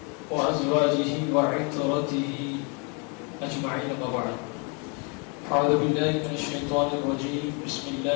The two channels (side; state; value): right; quieter; 35.1 dB